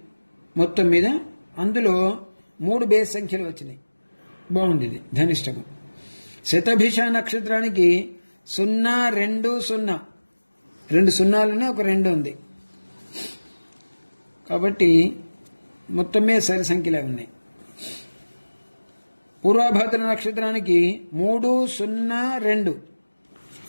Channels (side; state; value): both; inverted; correlation -1.00